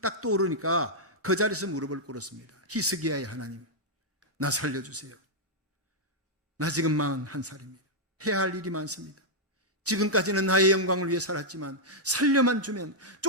떠오르니까 그 자리에서 무릎을 꿇었습니다. 히스기야의 하나님, 나 살려주세요. 나 지금 41살입니다. 해야 할 일이 많습니다. 지금까지는 나의 영광을 위해 살았지만 살려만 주면,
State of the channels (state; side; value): normal; both; correlation -0.05